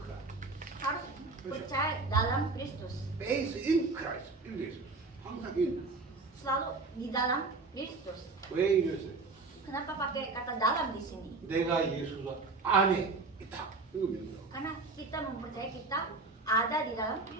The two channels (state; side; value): quieter; left; 3.7 dB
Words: Harus percaya dalam Kristus. Based in Christ. 이렇게 있어요. 항상 in. Selalu di dalam Kristus. 왜 이랬어요? Kenapa pakai kata dalam di sini? 내가 예수 안에 있다. 이거 믿는 거. Karena kita mempercayai kita ada di dalam